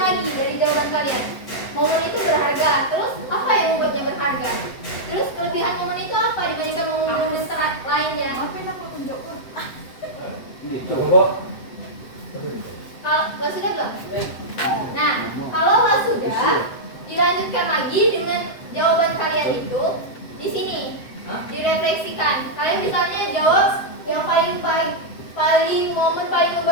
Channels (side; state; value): right; late; 7.8 ms